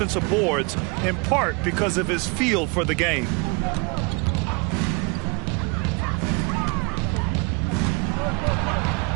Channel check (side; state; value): left; quieter; 31.4 dB